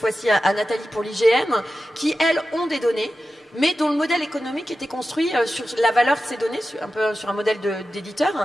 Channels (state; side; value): normal; both; correlation 0.93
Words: à Nathalie pour l'IGN, qui, elles, ont des données mais dont le modèle économique était construit sur la valeur de ces données, un peu sur un modèle